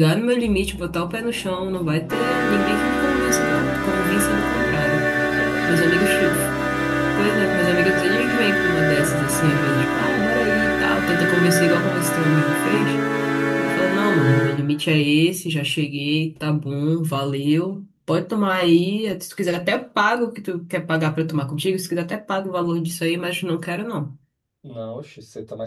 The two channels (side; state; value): both; identical; correlation 1.00